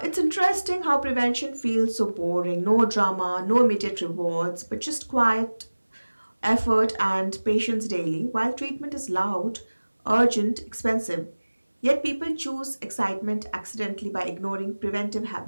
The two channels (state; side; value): inverted; both; correlation -1.00